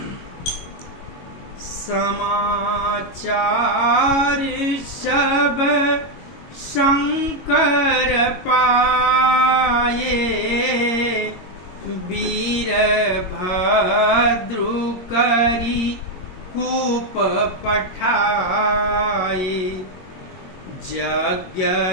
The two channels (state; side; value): late; right; 22 ms